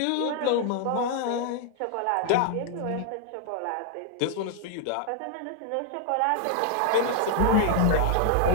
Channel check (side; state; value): both; different; correlation 0.00